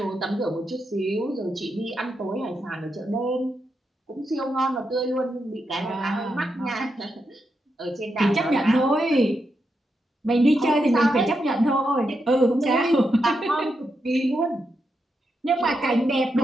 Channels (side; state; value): both; normal; correlation 0.84